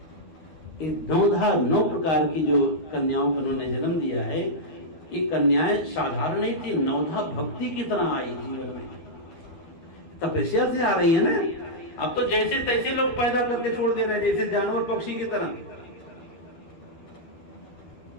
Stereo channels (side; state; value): right; late; 12 ms